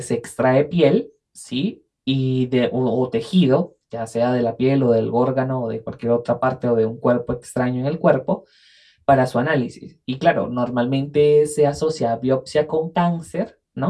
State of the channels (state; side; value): identical; both; correlation 1.00